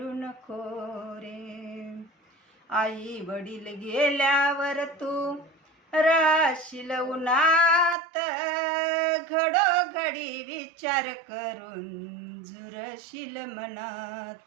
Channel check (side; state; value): left; drops out; at 8.0 s